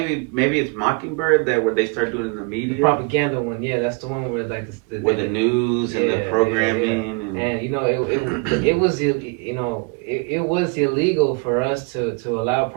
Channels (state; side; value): quieter; left; 33.1 dB